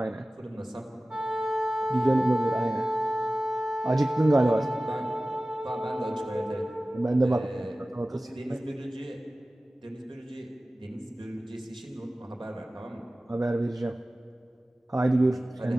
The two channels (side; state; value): both; normal; correlation 0.97